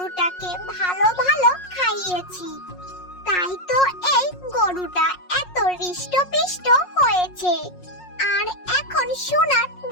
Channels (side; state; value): right; late; 5.5 ms